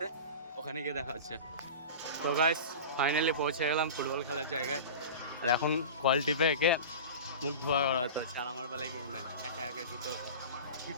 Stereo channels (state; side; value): inverted; both; correlation -0.32